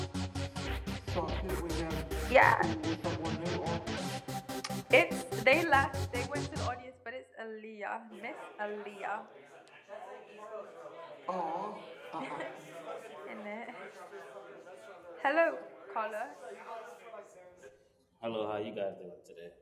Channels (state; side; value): identical; both; correlation 1.00